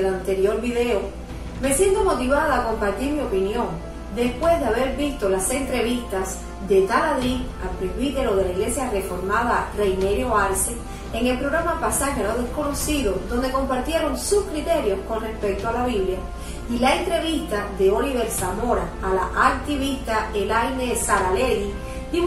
anterior video, me siento motivada a compartir mi opinión después de haber visto las entrevistas de Taladí al presbítero de la Iglesia Reformada Reinerio Arce en el programa Pasaje a lo Desconocido, donde compartieron sus criterios con respecto a la Biblia, y la entrevista de Oliver Zamora a la activista Elaine Saralegui,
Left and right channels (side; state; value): both; identical; correlation 1.00